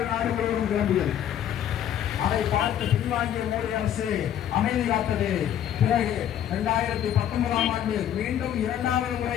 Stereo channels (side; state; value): right; quieter; 10.3 dB